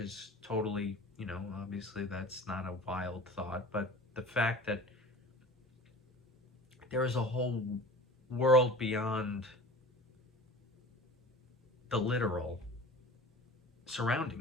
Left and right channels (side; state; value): both; normal; correlation 0.39